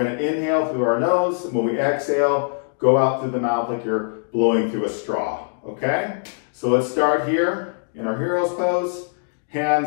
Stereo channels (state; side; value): silent; right; digital silence